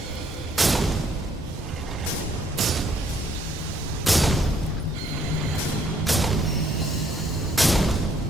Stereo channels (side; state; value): both; normal; correlation 0.66